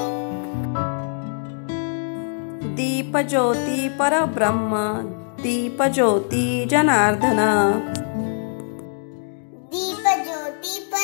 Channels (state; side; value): silent; right; digital silence